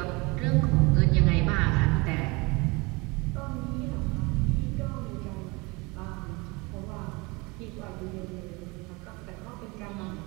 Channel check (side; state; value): left; quieter; 26.0 dB